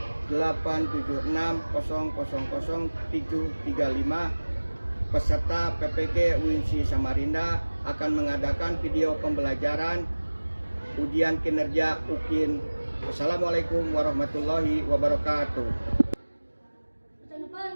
3278760000735. Peserta PPG UINSI Samarinda akan mengadakan video pembelajaran ujian kinerja UKIN. Wassalamualaikum warahmatullahi wabarakatuh.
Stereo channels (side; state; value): both; inverted; correlation -1.00